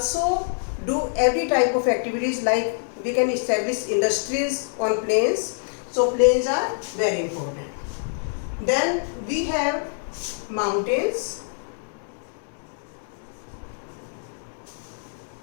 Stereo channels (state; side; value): silent; right; digital silence